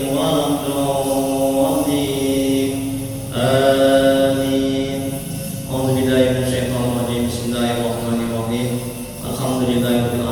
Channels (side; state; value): both; identical; correlation 1.00